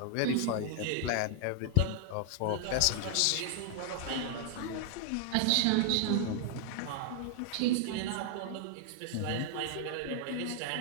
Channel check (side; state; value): both; different; correlation 0.00